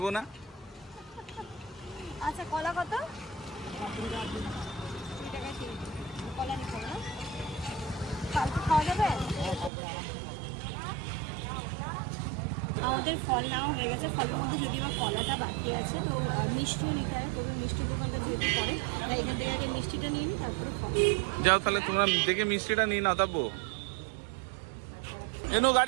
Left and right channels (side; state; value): left; drops out; at 9.7 s